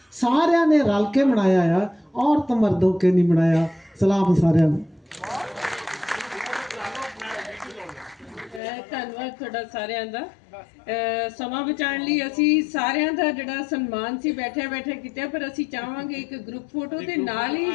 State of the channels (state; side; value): drops out; right; at 8.6 s